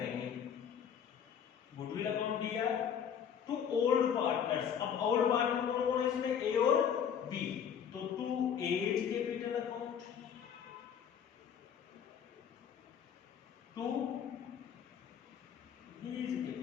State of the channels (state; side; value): quieter; right; 8.1 dB